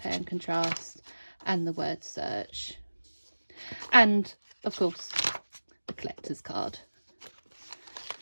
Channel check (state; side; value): inverted; both; correlation -1.00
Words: and contrast, and the word search, and of course the collector's card.